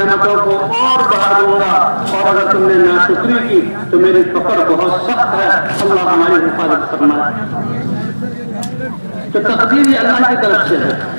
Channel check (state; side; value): inverted; both; correlation -1.00